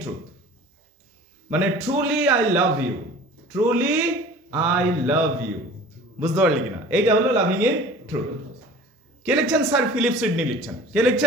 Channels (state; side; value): normal; both; correlation 0.43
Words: truth, মানে truly I love you, truly I love you. বুঝতে পারলি কিনা? এইটা হলো লাভিং ইন ট্রুথ। কে লিখছেন? স্যার ফিলিপ সিডনি লিখছেন। কে